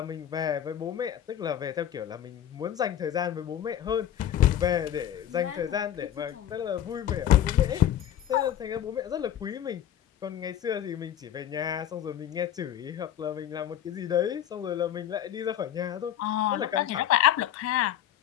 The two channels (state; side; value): quieter; right; 10.9 dB